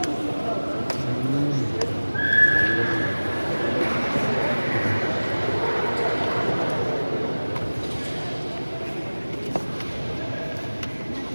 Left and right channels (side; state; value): both; inverted; correlation -1.00